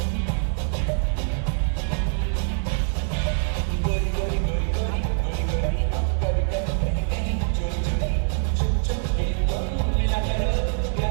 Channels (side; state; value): left; silent; digital silence